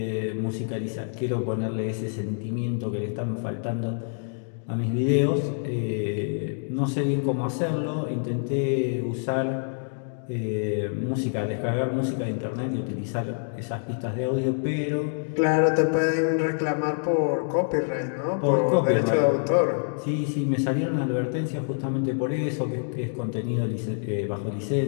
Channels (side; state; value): right; silent; digital silence